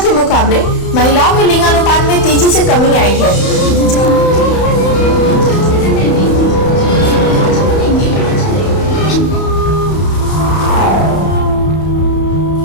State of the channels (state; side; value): late; right; 31 ms